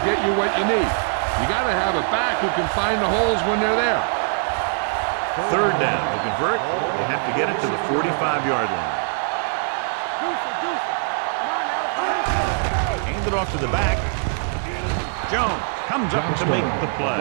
get you what you need. You got to have a back who can find the holes when they're there. Third down. To convert, they have to get it to the 45-yard line. Hand it off to the back. Jones comes up to make the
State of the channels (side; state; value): left; silent; 62 dB below the other